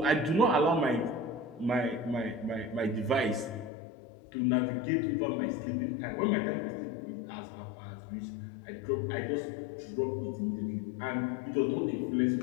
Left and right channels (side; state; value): right; drops out; at 3.7 s